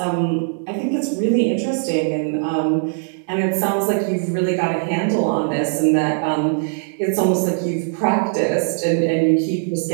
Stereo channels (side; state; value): left; silent; 58 dB below the other